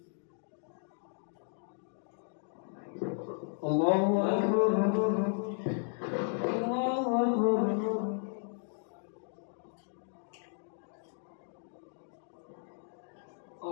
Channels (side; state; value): right; silent; 55 dB below the other